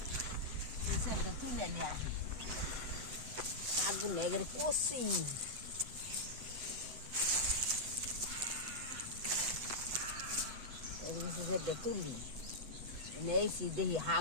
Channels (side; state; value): left; late; 7.9 ms